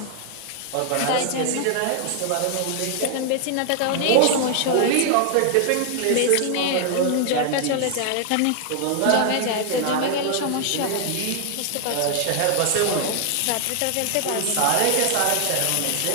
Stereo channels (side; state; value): both; different; correlation 0.00